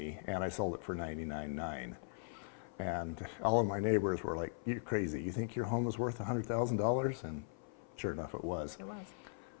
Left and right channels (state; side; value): silent; right; 52 dB below the other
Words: and I sold it for $99,900. And all of my neighbors were like, "You're crazy. You think your home is worth $100,000?" And sure enough, it was. It was.